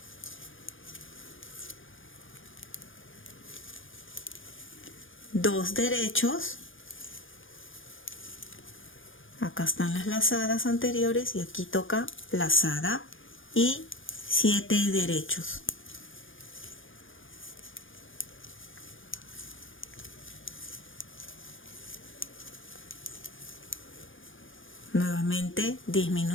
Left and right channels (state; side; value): late; right; 0.58 ms